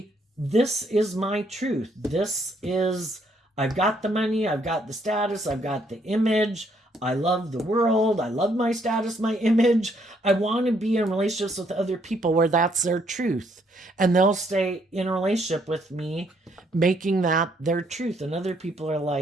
this is my truth. This is, I've got the money, I've got the status, I've got the image, I love the world, I love my status, my image. I want to be in relationships with other people where that's their truth. And they'll stay in a relationship with me, making that their truth. And other people are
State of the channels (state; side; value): normal; both; correlation 0.70